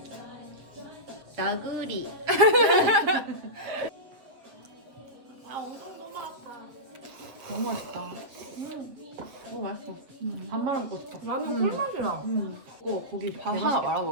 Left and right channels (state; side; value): late; left; 7.5 ms